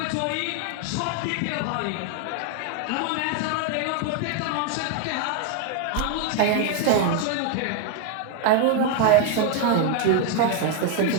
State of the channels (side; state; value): both; different; correlation 0.01